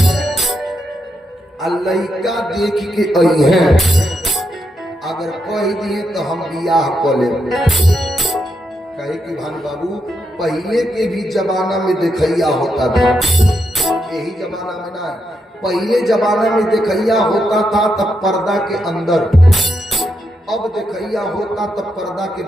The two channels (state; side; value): normal; both; correlation 0.82